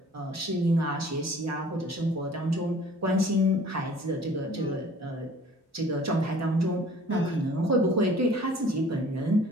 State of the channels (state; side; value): normal; both; correlation 0.51